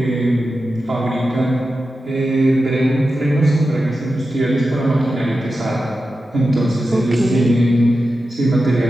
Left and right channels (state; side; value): normal; both; correlation 0.91